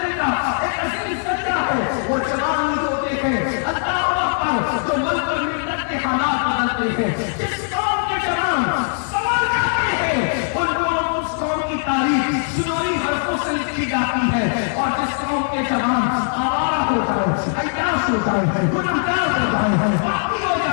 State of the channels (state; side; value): silent; right; digital silence